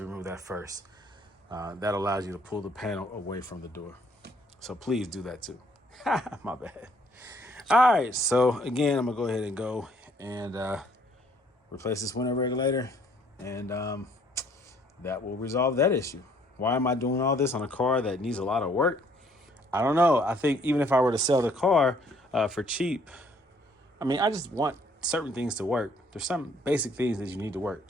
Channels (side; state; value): both; normal; correlation 0.63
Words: remove that first. That allows you to pull the panel away from the door. So please do that too. My bad. All right, so again, I'm gonna go ahead and go and replace this window regulator, and that will resolve that issue. Why am I doing all this on a car that needs a lot of work? I don't know. I think even if I were to sell the car for cheap, I mean, I just want certain things to work. There's some basic things that you need to work.